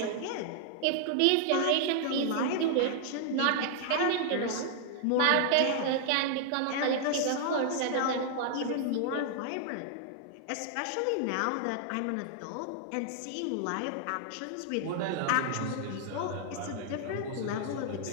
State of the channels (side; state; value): both; different; correlation -0.01